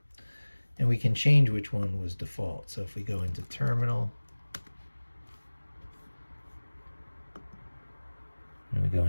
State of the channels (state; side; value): inverted; both; correlation -1.00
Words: And we can change which one was default. So if we go into terminal, and we go